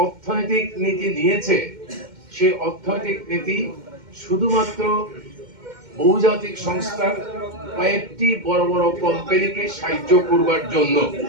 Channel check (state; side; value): late; left; 2.1 ms